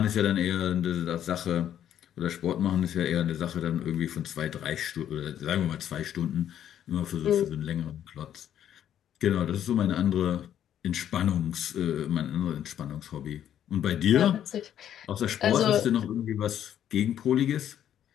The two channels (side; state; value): right; quieter; 10.4 dB